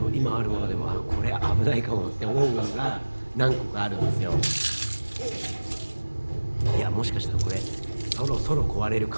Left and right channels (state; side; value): inverted; both; correlation -1.00